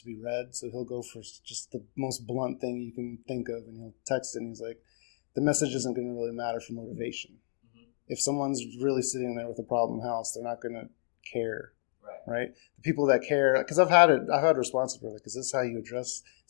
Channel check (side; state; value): right; silent; digital silence